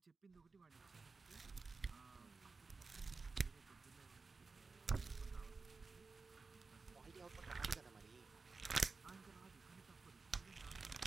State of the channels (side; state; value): left; quieter; 4.2 dB